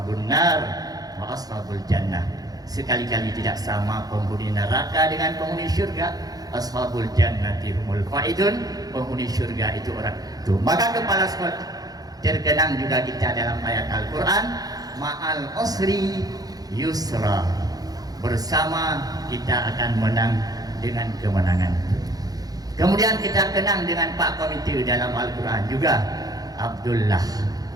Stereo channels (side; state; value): left; late; 0.18 ms